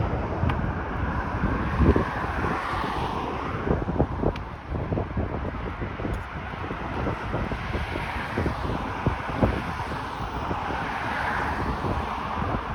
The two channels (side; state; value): both; identical; correlation 1.00